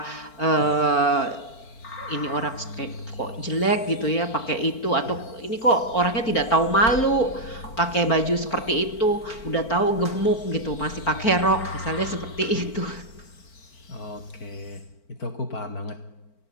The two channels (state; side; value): late; right; 4.4 ms